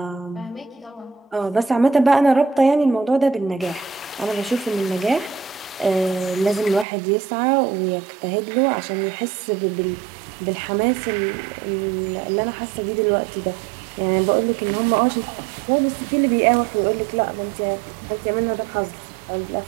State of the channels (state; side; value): drops out; left; at 6.9 s